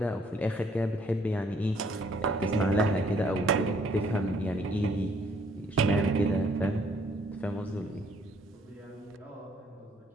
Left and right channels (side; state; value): both; normal; correlation 0.65